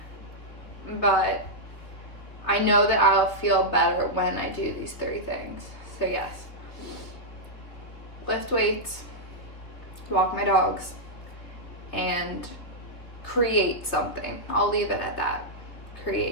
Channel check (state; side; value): late; right; 3.0 ms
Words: but I know that I'll feel better when I do these 3 things. So yes, lift weights, walk my dogs, and create something. I'll leave it at that.